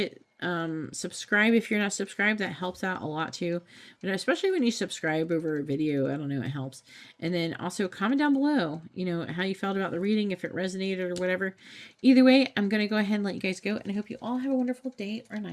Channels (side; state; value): both; identical; correlation 1.00